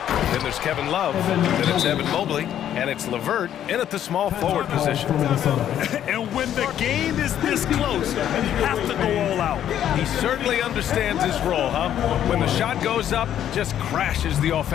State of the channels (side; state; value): right; quieter; 10.6 dB